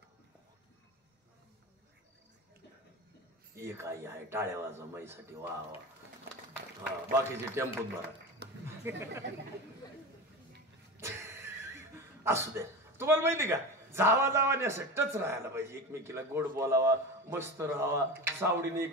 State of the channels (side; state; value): both; normal; correlation 0.27